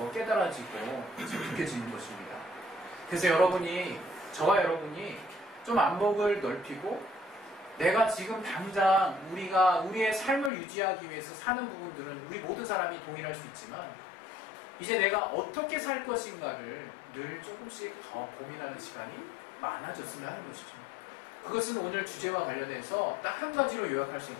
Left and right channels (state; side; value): drops out; right; at 10.5 s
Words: 깨달아지고 느껴지는 것입니다. 그래서 저와 여러분이 좀 안목을 넓히고 내가 지금 당장 우리의 삶을 유지하기 위해서 사는 부분들은 우리 모든 사람이 동일할 수 있지만 이제 내가 어떻게 살 것인가를 늘 조금씩 더 고민하는 시간이 많아졌으면 하는 것이죠. 그것은 오늘 주제와 관련해서 딱 한 가지로 요약할 수